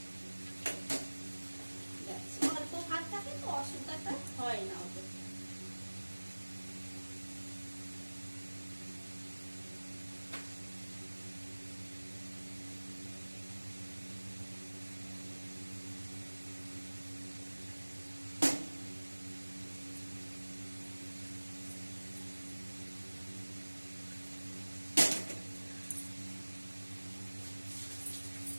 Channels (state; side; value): inverted; both; correlation -1.00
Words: অল্প ভাত থাকে তো অসুবিধাটা হয় না ওদের।